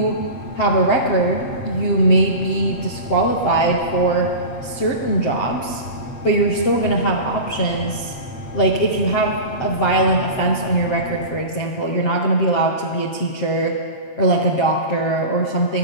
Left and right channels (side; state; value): right; late; 7.7 ms